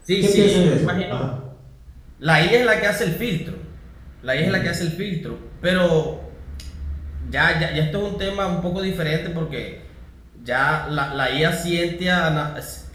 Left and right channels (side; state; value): both; identical; correlation 1.00